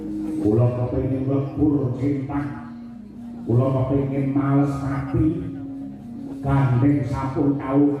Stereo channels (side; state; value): both; identical; correlation 1.00